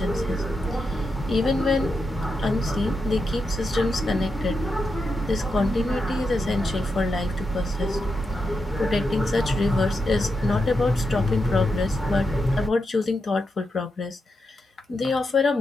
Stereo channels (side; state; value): both; normal; correlation 0.86